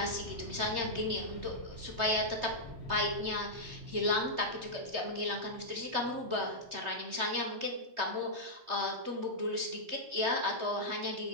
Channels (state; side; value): late; left; 3.2 ms